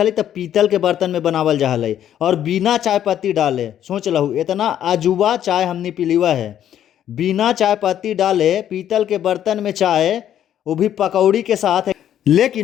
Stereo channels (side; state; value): right; quieter; 10.6 dB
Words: तब पीतल के बर्तन में बनावल जा हलई और बिना चाय पत्ती डाले। सोच लहू इतना अजूबा चाय हमने पीलीवा है, बिना चाय पत्ती डाले पीतल के बर्तन में चाय, वो भी पकौड़ी के साथ।